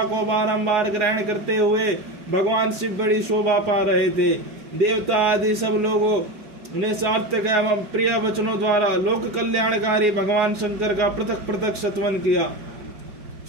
को बारंबार ग्रहण करते हुए भगवान शिव बड़ी शोभा पा रहे थे। देवता आदि सब लोगों ने सार्थक एवं प्रिय वचनों द्वारा लोक कल्याणकारी भगवान शंकर का पृथक पृथक सत्वन किया।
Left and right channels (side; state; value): left; late; 4.8 ms